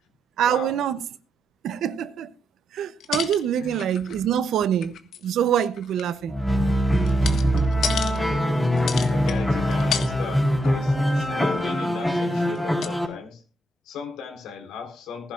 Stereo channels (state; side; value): normal; both; correlation 0.80